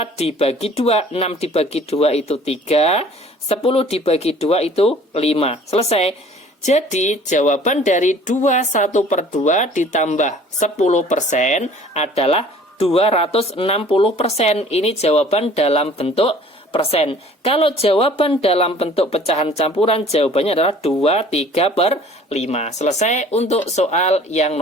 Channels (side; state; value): both; normal; correlation 0.51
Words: dibagi 2. 6 dibagi 2 itu 3, 10 dibagi 2 itu 5. Selesai. Jadi jawaban dari 2 1 per 2 ditambah 10% adalah 260%. Ini jawaban dalam bentuk persen. Kalau jawaban dalam bentuk pecahan campuran, jawabannya adalah 2 3 per 5. Selesai untuk soal yang